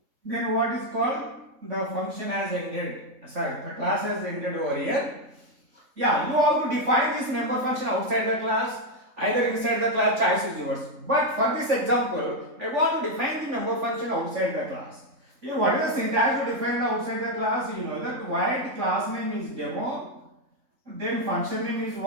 Then what is called? The function has ended. Sorry, the class has ended over here. Yeah, you have to define this member function outside the class, either inside the class, choice is yours. But for this example, I want to define the member function outside the class. Here, what is the syntax to define the outside the class? You know that void class name is demo, then function name is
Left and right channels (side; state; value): left; late; 3.5 ms